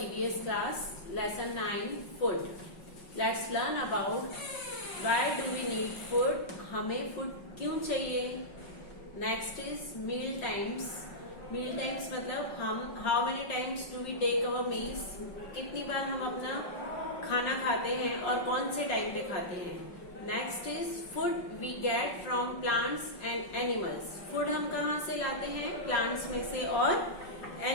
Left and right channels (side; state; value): right; late; 5.4 ms